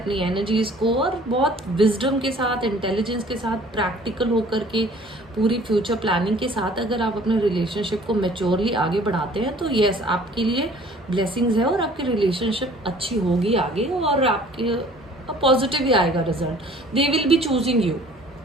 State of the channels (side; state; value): both; normal; correlation 0.52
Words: एनर्जीज को और बहुत विजडम के साथ, इंटेलिजेंस के साथ, प्रैक्टिकल होकर के पूरी फ्यूचर प्लानिंग के साथ अगर आप अपने रिलेशनशिप को मैच्योरली आगे बढ़ाते हैं, तो यस, आपके लिए ब्लेसिंग्स है और आपकी रिलेशनशिप अच्छी होगी आगे, और आपके पॉजिटिव ही आएगा result. They will be choosing you.